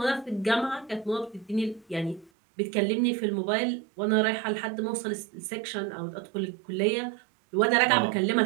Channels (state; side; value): drops out; left; at 2.3 s